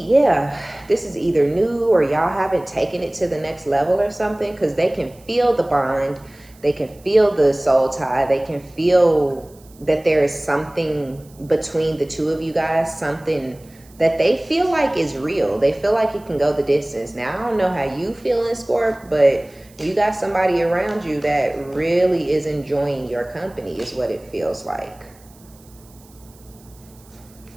yeah, this is either new or y'all haven't taken it to the next level or something, because they can feel the bond, they can feel the soul tie, they can feel that there is something between the two of you guys, something that they feel like is real. They feel like it can go the distance. Now, I don't know how you feel in Scorp, but you got somebody around you that really is enjoying your company, is what it feels like.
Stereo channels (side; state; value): right; noise; hiss, 27 dB below the sound